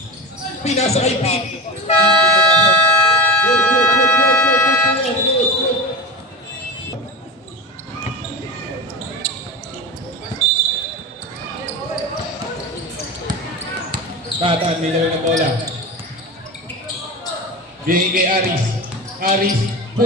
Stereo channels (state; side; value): normal; both; correlation 0.26